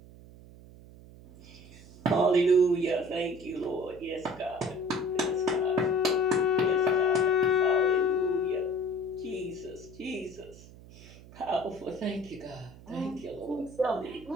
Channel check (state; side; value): noise; right; hum, 20 dB below the sound